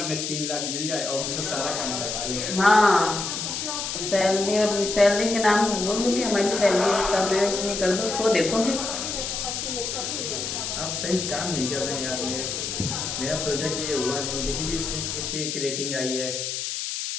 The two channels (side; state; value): left; noise; hiss, 3 dB below the sound